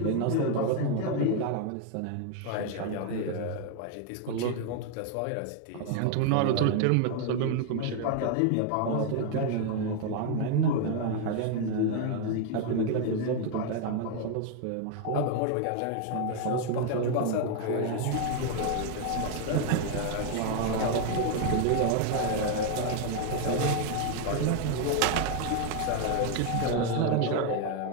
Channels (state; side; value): different; both; correlation 0.00